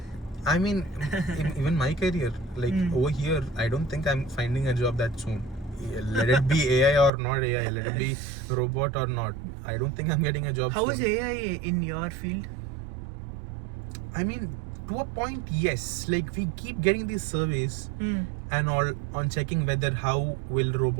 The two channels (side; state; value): left; drops out; at 7.1 s